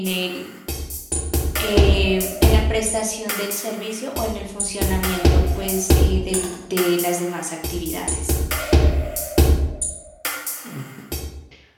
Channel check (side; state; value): both; identical; correlation 1.00